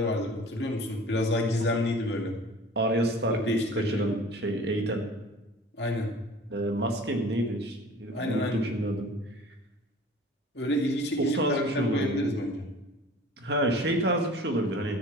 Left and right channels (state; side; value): normal; both; correlation 0.45